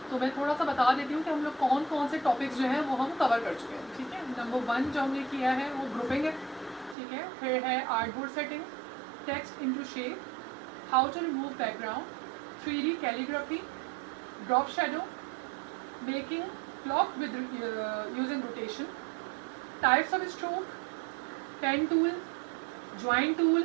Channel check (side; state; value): left; drops out; at 7.0 s